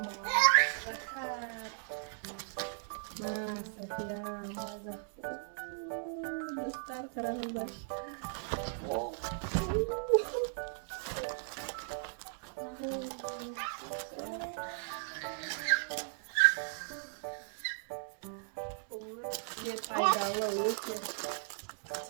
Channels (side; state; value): left; silent; digital silence